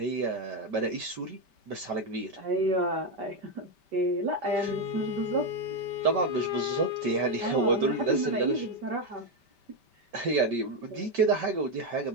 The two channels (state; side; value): late; left; 5.1 ms